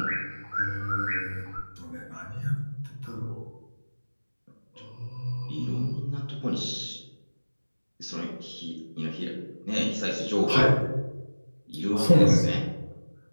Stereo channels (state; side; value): inverted; both; correlation -1.00